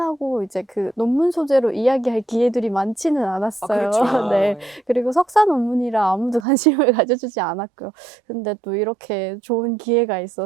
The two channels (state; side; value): drops out; left; at 6.5 s